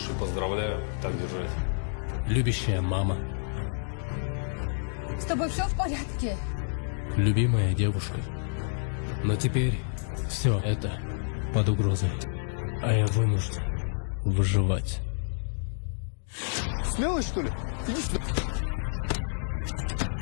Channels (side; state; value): right; silent; digital silence